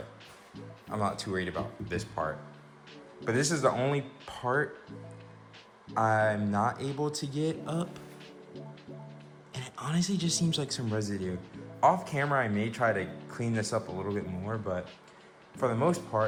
I'm not too worried about this part. But this is the only part I'm not able to get up, and it honestly just seems like some residue. Off camera I may try to clean this up a little bit more, but for the most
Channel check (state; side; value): identical; both; correlation 1.00